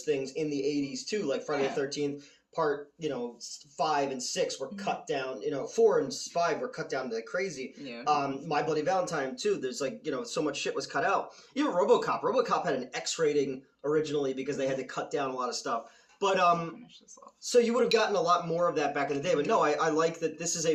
things in the 80s, too, like Friday the 13th. Part, 5 and 6 were cut down, 4 and 5 were cut down to crazy. Yeah. My Bloody Valentine, too, there's like, so much shit was cut out. Even RoboCop had an X rating originally because they had to cut down a lot of stuff. But, so you would have gotten a lot more of that back in the day. But no, I like that this is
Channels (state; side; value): identical; both; correlation 1.00